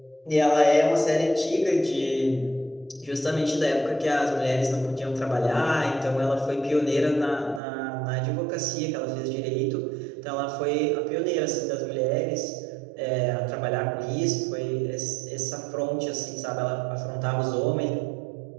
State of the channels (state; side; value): drops out; left; at 7.6 s